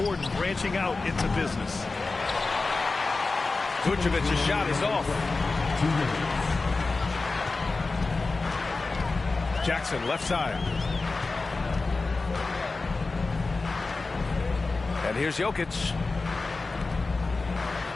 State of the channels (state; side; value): quieter; right; 3.7 dB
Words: branching out into business. Vucevic's shot is off. Jackson left side. And here's Jokic.